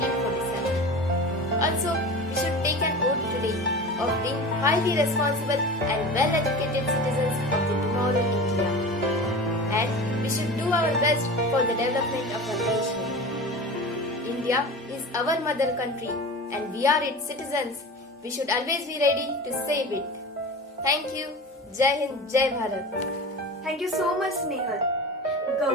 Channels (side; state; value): both; normal; correlation 0.32